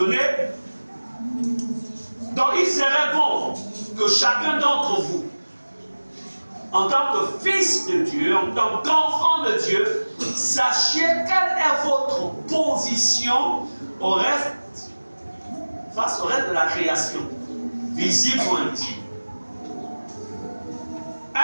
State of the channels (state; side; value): inverted; both; correlation -1.00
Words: donc il serait bon que chacun d'entre vous, en tant que fils de Dieu, en tant qu'enfant de Dieu, sachiez quelle est votre position face au reste de la création, visible ou invisible.